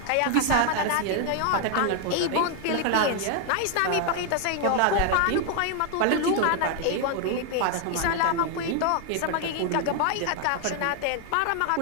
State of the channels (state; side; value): different; both; correlation 0.00